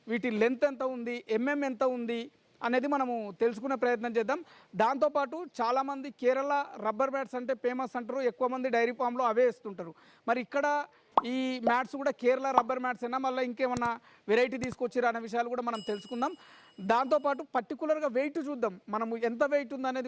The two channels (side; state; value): both; identical; correlation 1.00